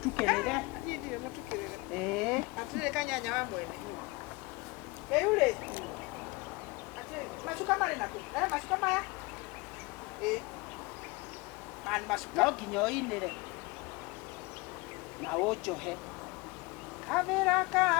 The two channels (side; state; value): right; quieter; 24.4 dB